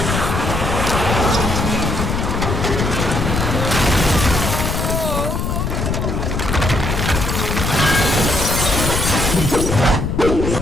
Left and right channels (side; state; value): left; noise; rumble, 1 dB below the sound